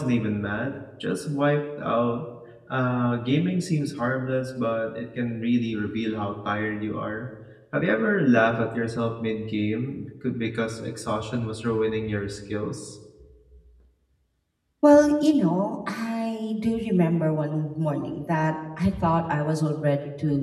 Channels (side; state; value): both; identical; correlation 1.00